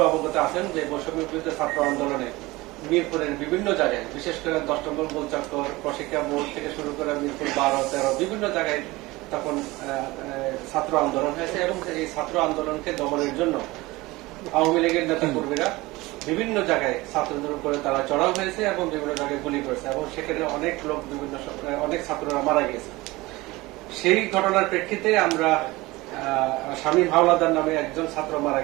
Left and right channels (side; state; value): left; quieter; 20.8 dB